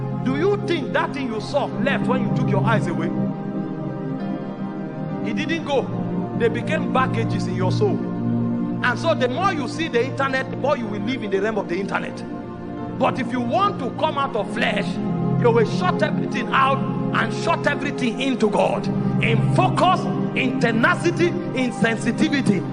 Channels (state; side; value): identical; both; correlation 1.00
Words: Do you think that thing you saw left when you took your eyes away? It didn't go. They became baggages in your soul. And so the more you see the internet, the more you will live in the realm of the internet. But if you want to come out of flesh, you will shut everything out and shut everything into God, in focus, in tenacity, in sensitivity,